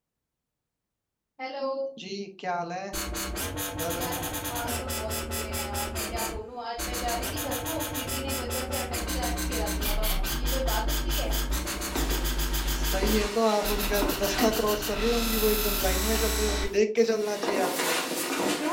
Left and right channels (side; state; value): both; identical; correlation 1.00